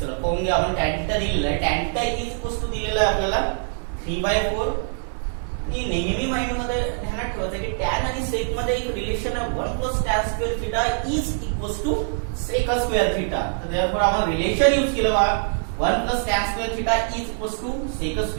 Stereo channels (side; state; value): left; silent; digital silence